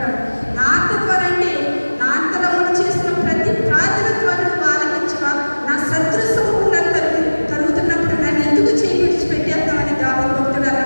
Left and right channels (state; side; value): inverted; both; correlation -1.00